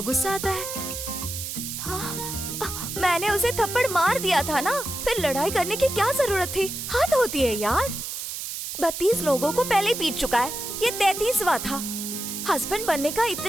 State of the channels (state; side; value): noise; right; hiss, 6 dB below the sound